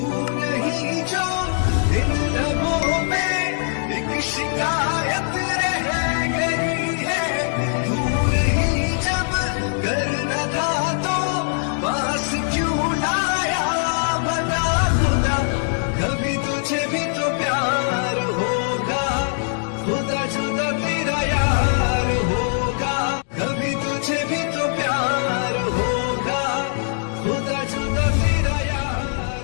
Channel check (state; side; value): silent; right; digital silence